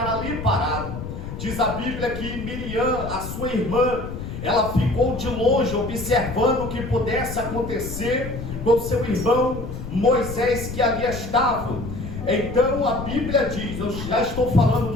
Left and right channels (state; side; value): noise; left; rumble, 8 dB below the sound